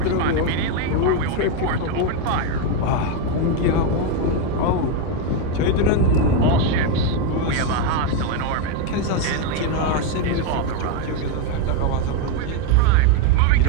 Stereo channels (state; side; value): different; both; correlation 0.02